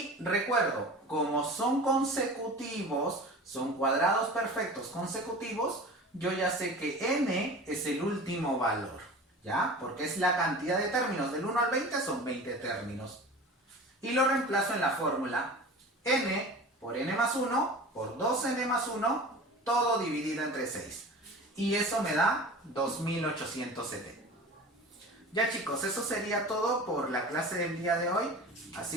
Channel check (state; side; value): normal; both; correlation 0.37